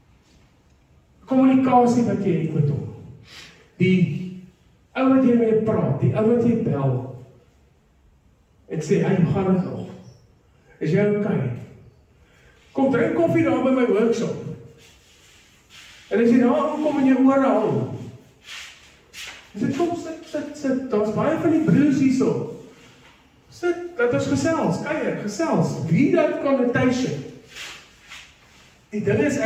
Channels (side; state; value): both; identical; correlation 1.00